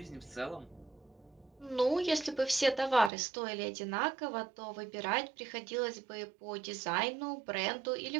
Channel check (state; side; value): drops out; left; at 3.1 s